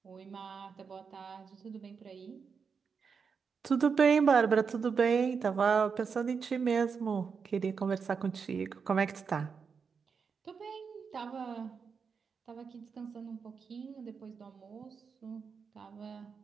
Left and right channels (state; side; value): quieter; left; 5.8 dB